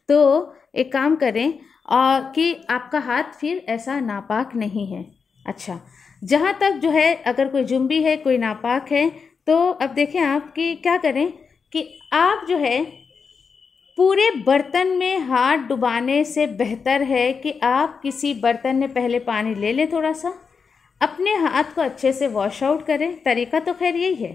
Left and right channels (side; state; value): right; quieter; 5.6 dB